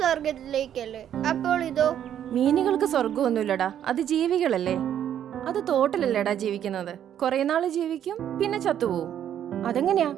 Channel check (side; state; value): left; quieter; 10.1 dB